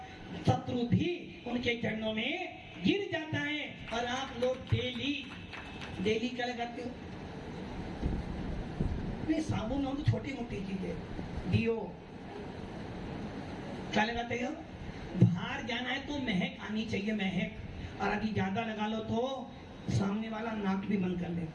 शत्रु भी उनके चरणों में गिर जाता है। और आप लोग डेली क्या लगाते हो? नहीं, साबुन हो तो छोटी मोटी चीजें, दियो क्या लगाते हो? बाहर जाना है तो महक आनी चाहिए, महक। और यदि ज्यादा लगा लो तो सामने वाला नाक भी बंद कर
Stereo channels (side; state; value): both; identical; correlation 1.00